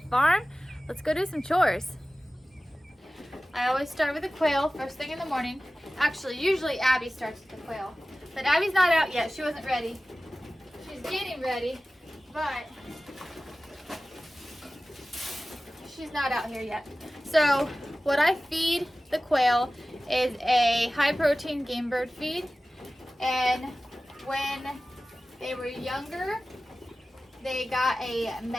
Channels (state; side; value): normal; both; correlation 0.96